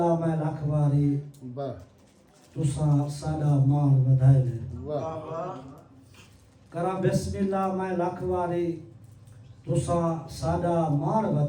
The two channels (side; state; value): both; identical; correlation 1.00